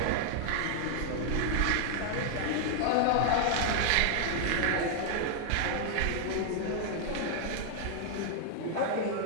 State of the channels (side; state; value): both; different; correlation 0.00